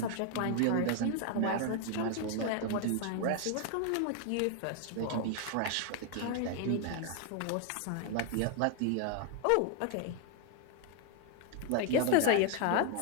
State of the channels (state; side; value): different; both; correlation 0.00